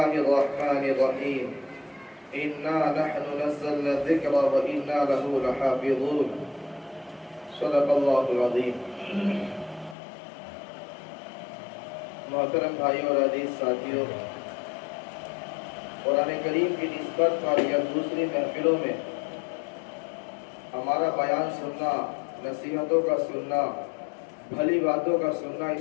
الرحمن الرحيم إنا نحن نزلنا الذكر وإنا له لحافظون صدق الله العظيم. محترم بھائیوں اور عزیز ساتھیوں، قرآن کریم کی نسبت پر یا دوسری محفلوں میں ہمارا بیان سننا، نصیحتوں کا سننا، بھلی باتوں کا سننا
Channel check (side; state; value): right; drops out; at 10.0 s